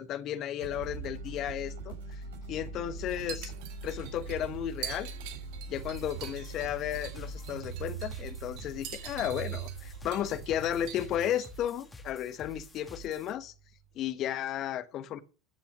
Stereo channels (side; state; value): right; quieter; 6.6 dB